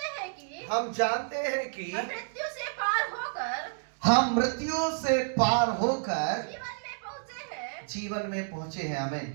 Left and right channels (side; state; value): left; silent; digital silence